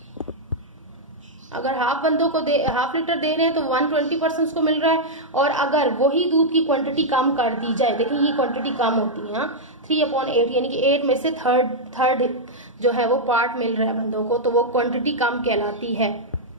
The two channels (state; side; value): normal; both; correlation -0.05